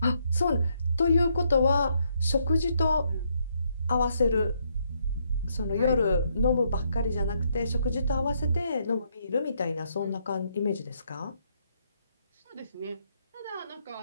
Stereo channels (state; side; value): inverted; both; correlation -0.74